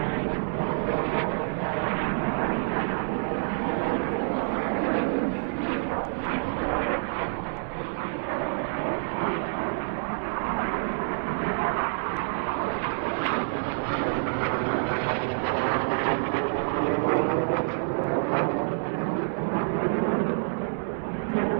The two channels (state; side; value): silent; left; 60 dB below the other